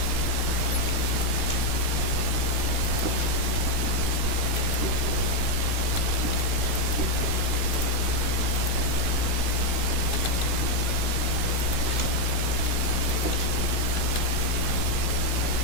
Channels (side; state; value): left; late; 16 ms